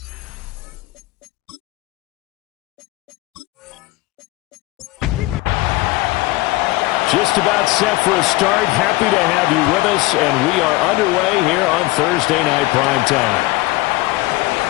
Just about set for a start. Happy to have you with us, and we are underway here on Thursday Night Primetime.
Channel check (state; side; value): quieter; right; 19.8 dB